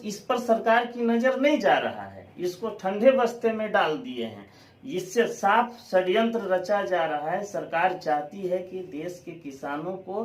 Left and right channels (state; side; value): identical; both; correlation 1.00